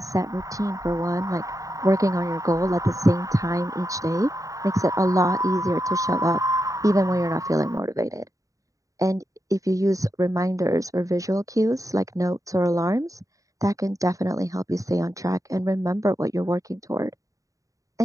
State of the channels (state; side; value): late; left; 0.16 ms